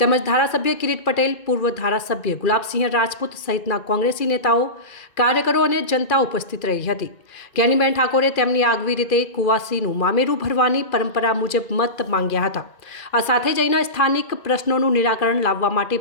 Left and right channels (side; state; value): right; late; 2.4 ms